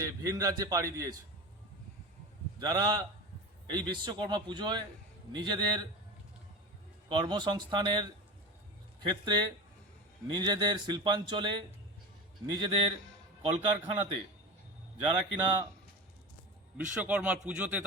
ভিন রাজ্যে পাড়ি দিয়েছে। যারা এই বিশ্বকর্মা পুজোয় নিজেদের কর্মসংস্থানের ক্ষেত্রে, নিজেদের শিল্পাঞ্চলে, নিজেদের কলকারখানাতে যারা কিনা বিশ্বকর্মার পুজোতে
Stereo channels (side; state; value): both; normal; correlation 0.27